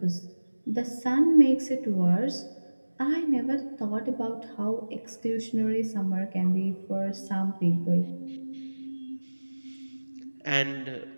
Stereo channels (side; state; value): both; inverted; correlation -1.00